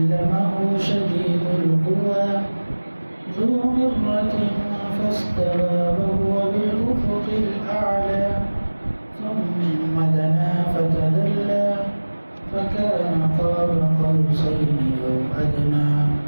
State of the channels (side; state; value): both; inverted; correlation -1.00